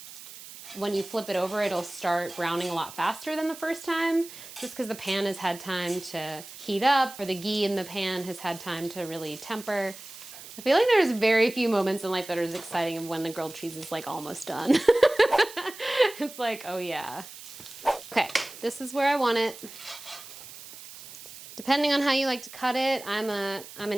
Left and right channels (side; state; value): right; noise; hiss, 15 dB below the sound